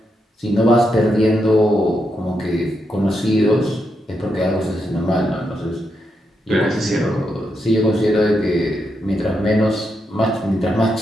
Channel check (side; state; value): both; normal; correlation 0.83